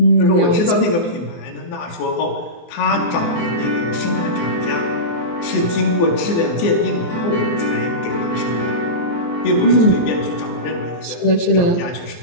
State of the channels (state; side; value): late; right; 24 ms